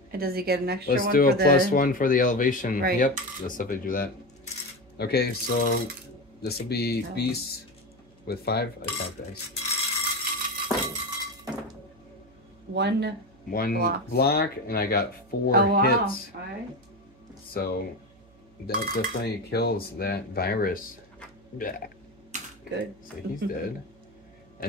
And does he get an extra Let's one do for a +1 for the elevation. Right. Yep, let's definitely do that. Okay, so this will be Beast with 5 attack dice. 1 block, and I got 4 hits. Alright. So that definitely kills that virus. Good. So he's dead.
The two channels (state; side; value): noise; right; hum, 28 dB below the sound